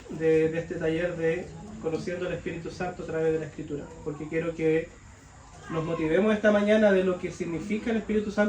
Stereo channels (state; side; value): identical; both; correlation 1.00